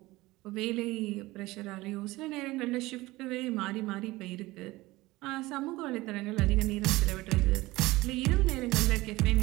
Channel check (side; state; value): left; quieter; 19.6 dB